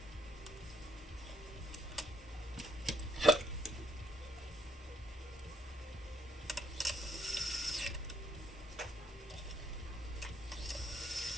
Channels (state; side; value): normal; both; correlation 0.68